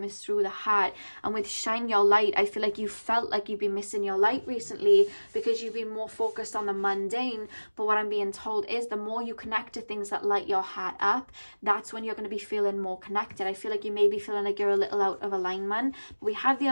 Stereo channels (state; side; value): inverted; both; correlation -1.00